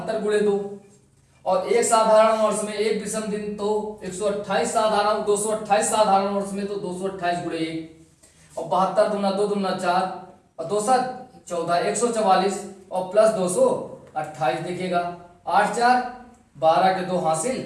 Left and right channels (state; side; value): identical; both; correlation 1.00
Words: गुणे 2, और एक साधारण वर्ष में 1 विषम दिन, तो 128 साधारण, 228 साधारण वर्ष में तो 228 गुणे 1, और 72 दूना 2 दूना 4 और 2 14 144 और प्लस 228। देखिएगा 8 4 12 के 2